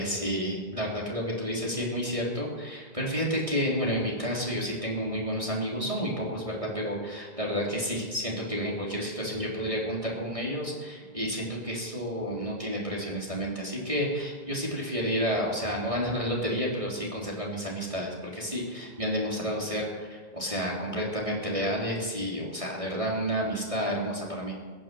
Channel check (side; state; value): left; late; 1.6 ms